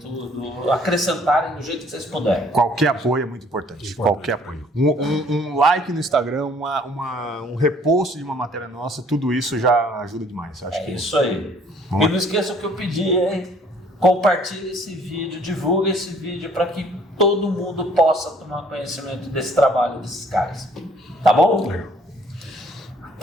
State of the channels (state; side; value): normal; both; correlation 0.59